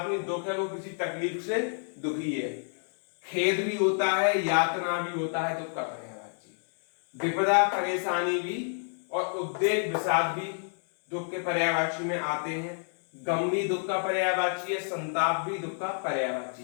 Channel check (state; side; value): silent; right; 58 dB below the other